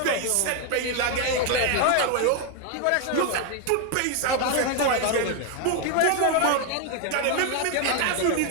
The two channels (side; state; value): both; different; correlation 0.01